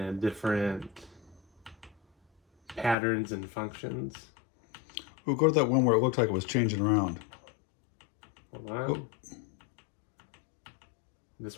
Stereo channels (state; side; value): drops out; right; at 3.0 s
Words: different patterns and functions. We'll go to that one where it looked like it was changing around. Hold on. Oh. This